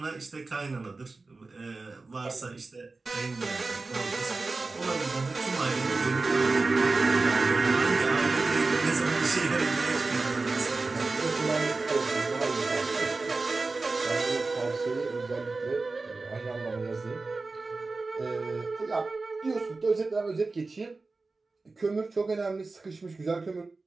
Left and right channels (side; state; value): left; quieter; 3.7 dB